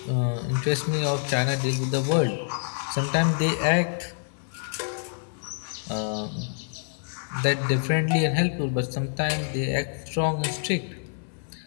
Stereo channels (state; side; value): silent; right; 60 dB below the other